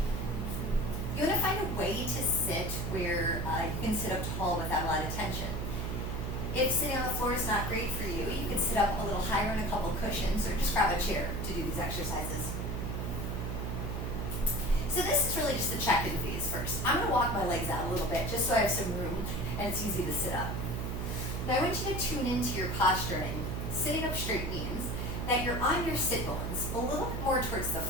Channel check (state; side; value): noise; right; hum, 3 dB below the sound